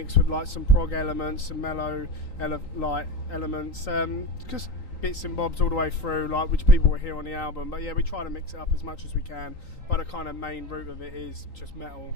with like some prog elements, some mellow elements, just bits and bobs all the way through, like which people will hear on the album. But yeah, we try to mix it up as much as we can. But the kind of main root of it is just metal,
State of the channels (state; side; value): late; right; 3.9 ms